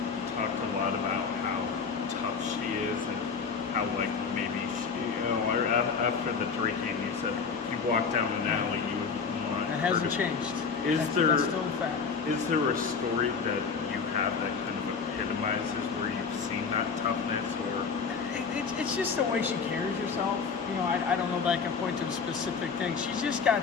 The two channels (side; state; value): right; quieter; 5.5 dB